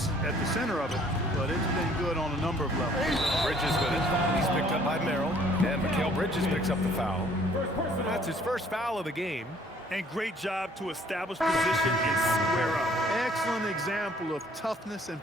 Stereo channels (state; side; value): normal; both; correlation 0.59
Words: of it, but it's been good on a number of levels. Bridges with it. He's picked up by Merrill. And Mikal Bridges picks up the foul. That's his first foul of the game. And great job to establish position and square up. Excellent example of toughness and